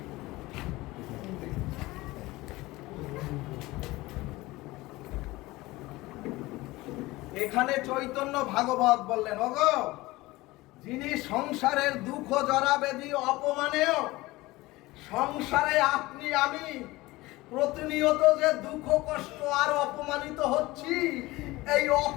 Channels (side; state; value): right; quieter; 19.9 dB